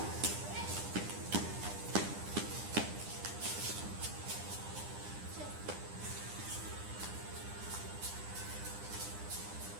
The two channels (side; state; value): left; late; 9.9 ms